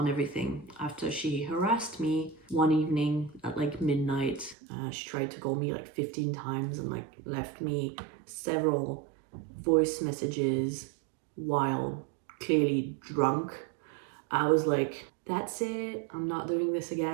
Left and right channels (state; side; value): drops out; left; at 4.5 s